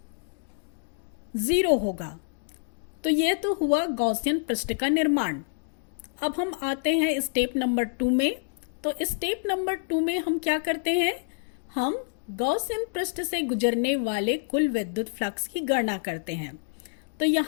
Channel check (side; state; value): right; silent; digital silence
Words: 0 होगा। तो यह तो हुआ गॉसियन पृष्ठ का निर्माण। अब हम आते हैं स्टेप नंबर 2 में। तो स्टेप नंबर 2 में हम क्या करते हैं, हम गॉसियन पृष्ठ से गुजरने वाले कुल विद्युत फ्लक्स की गणना करते हैं। तो